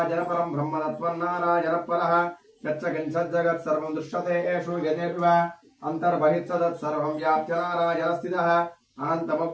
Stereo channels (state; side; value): identical; both; correlation 1.00